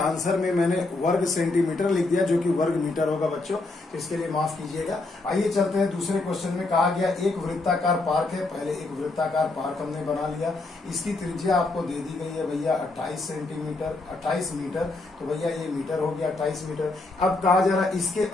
आंसर में मैंने वर्ग सेंटीमीटर लिख दिया जो कि वर्ग मीटर होगा बच्चों, तो इसके लिए माफ कीजिएगा। आइए चलते हैं दूसरे क्वेश्चन में। कहा गया एक वृत्ताकार पार्क है, पहले एक वृत्ताकार पार्क हमने बना लिया, इसकी त्रिज्या आपको दे दी गई है भैया 28 मीटर, तो भैया ये मीटर हो गया 28 मीटर। अब कहा जा रहा है इसके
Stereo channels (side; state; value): right; quieter; 3.2 dB